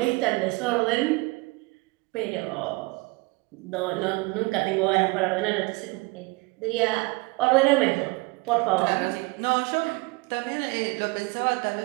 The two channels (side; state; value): left; quieter; 25.5 dB